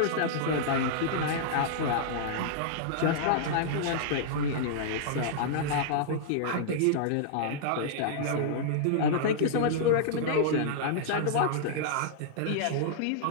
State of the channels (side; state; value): both; different; correlation -0.02